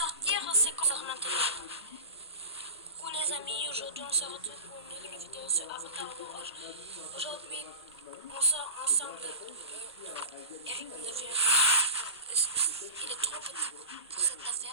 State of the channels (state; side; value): inverted; both; correlation -0.30